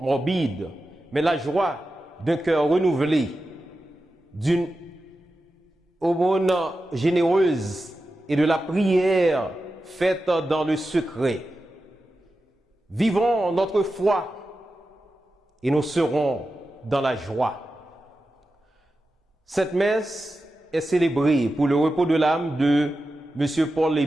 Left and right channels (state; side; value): normal; both; correlation 0.92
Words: mais la joie d'un cœur renouvelé, d'une aumône généreuse et de la prière faite dans le secret. Vivons notre foi et nous serons dans la joie. Cette messe est célébrée pour le repos de l'âme de M.